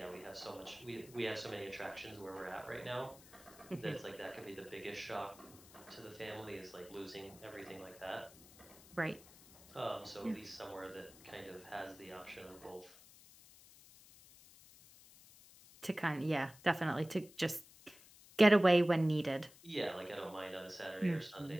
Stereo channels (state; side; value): noise; left; hiss, 21 dB below the sound